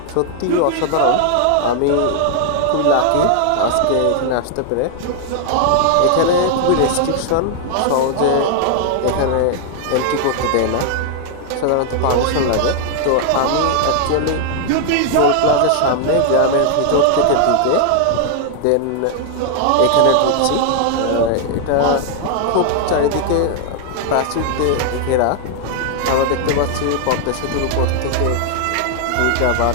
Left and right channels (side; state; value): both; different; correlation 0.00